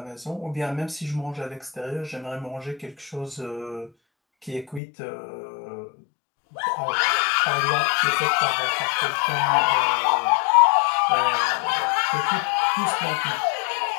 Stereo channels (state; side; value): drops out; right; at 4.8 s